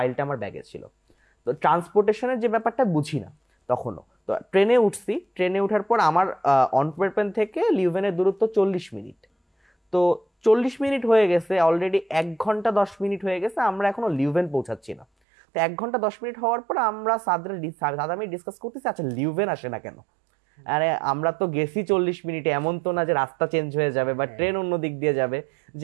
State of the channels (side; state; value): left; drops out; at 15.1 s